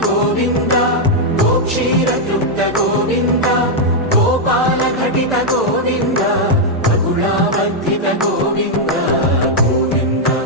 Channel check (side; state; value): both; normal; correlation -0.02